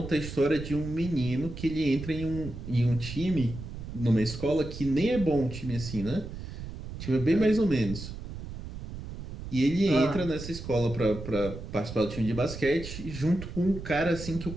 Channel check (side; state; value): right; noise; rumble, 10 dB below the sound